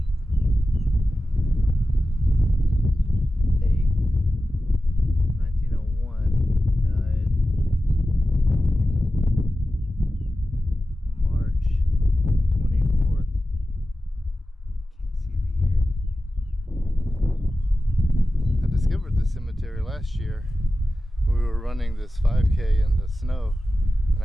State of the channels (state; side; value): normal; both; correlation 0.94